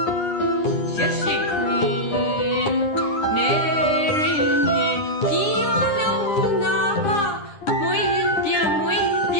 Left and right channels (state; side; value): late; right; 9.9 ms